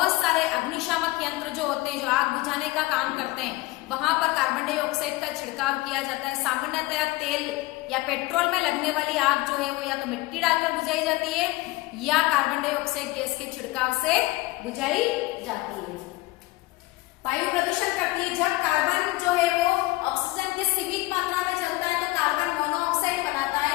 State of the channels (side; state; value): right; quieter; 20.3 dB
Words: सारे अग्निशामक यंत्र जो होते हैं जो आग बुझाने का काम करते हैं वहां पर कार्बन डाइऑक्साइड का छिड़काव किया जाता है। सामान्यतया तेल या पेट्रोल में लगने वाली आग जो है वो या तो मिट्टी डालकर बुझाई जाती है या कार्बन डाइऑक्साइड गैस के छिड़काव से बुझाई जाती है। वायु प्रदूषण करती है। जब कार्बन जो है वो ऑक्सीजन के सीमित मात्रा में चलता है तो कार्बन मोनोऑक्साइड बनाता